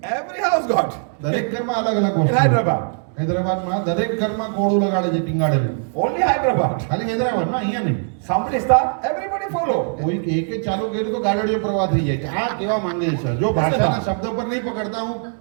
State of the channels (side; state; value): left; silent; 57 dB below the other